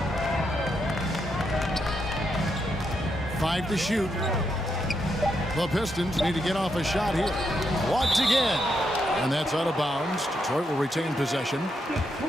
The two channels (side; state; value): both; normal; correlation 0.81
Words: Five to shoot. The Pistons need to get off a shot here. Blocked again. And that's out of bounds. Detroit will retain possession.